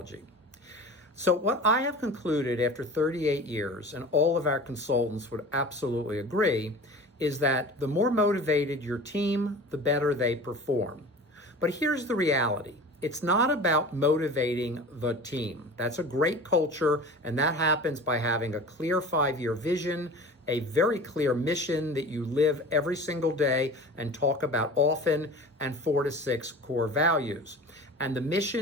So what I have concluded after 38 years, and all of our consultants would absolutely agree, is that the more motivated your team, the better they perform. But here's the reality. It's not about motivating the team. That's a great culture, and that happens by having a clear 5-year vision, a very clear mission that you live every single day and talk about often, and 4 to 6 core values. And the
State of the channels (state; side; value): normal; both; correlation 0.37